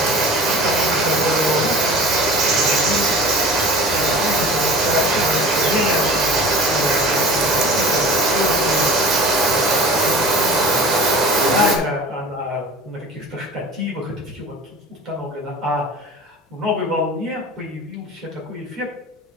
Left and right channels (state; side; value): normal; both; correlation 0.39